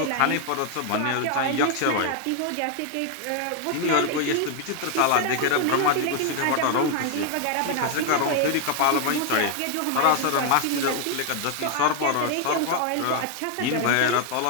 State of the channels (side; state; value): both; different; correlation 0.00